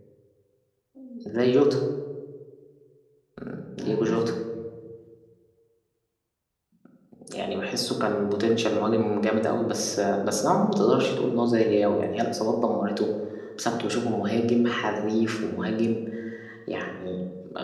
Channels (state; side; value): identical; both; correlation 1.00